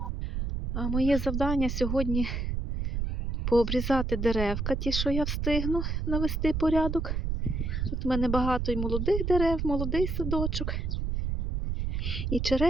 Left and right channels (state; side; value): noise; right; rumble, 1 dB below the sound